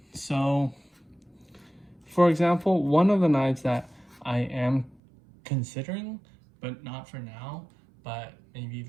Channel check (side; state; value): left; drops out; at 5.0 s